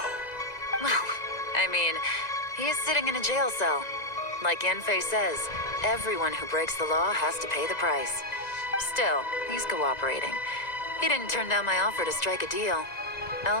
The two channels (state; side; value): late; right; 1.9 ms